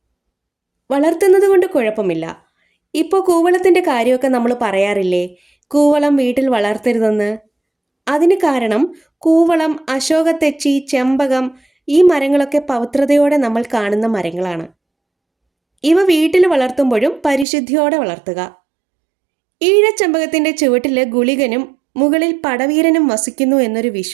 വളർത്തുന്നത് കൊണ്ട് കുഴപ്പമില്ല. ഇപ്പോൾ കൂവളത്തിൻ്റെ കാര്യമൊക്കെ നമ്മൾ പറയാറില്ലേ, കൂവളം വീട്ടിൽ വളർത്തരുതെന്ന്. അതിന് കാരണം കൂവളം, അശോകത്തെച്ചി, ചെമ്പകം ഈ മരങ്ങളൊക്കെ പവിത്രതയോടെ നമ്മൾ കാണുന്ന മരങ്ങളാണ്. ഇവ വീട്ടിൽ വളർത്തുമ്പോഴും പരിശുദ്ധിയോടെ വളർത്തുക. ഈഴച്ചെമ്പകത്തിൻ്റെ ചുവട്ടിൽ ഗുളികനും മുകളിൽ പടവീരനും വസിക്കുന്നു എന്നൊരു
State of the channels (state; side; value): drops out; left; at 17.4 s